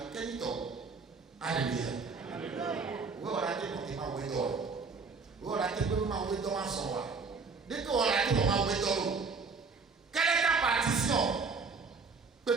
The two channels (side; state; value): left; quieter; 4.7 dB